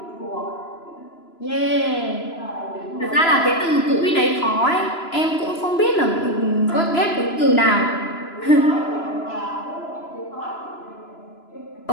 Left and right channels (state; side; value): late; right; 3.0 ms